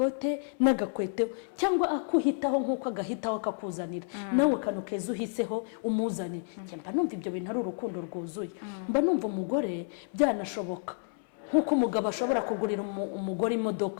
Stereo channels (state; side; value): silent; right; 58 dB below the other